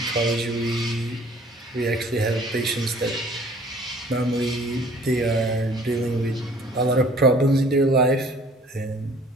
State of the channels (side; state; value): both; normal; correlation 0.53